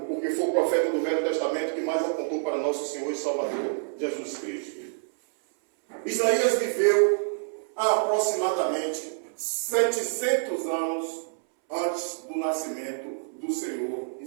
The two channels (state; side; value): silent; left; 60 dB below the other